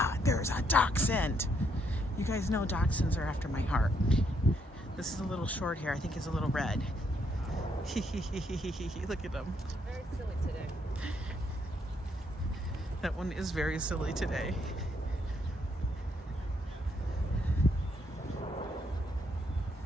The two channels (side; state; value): both; normal; correlation 0.73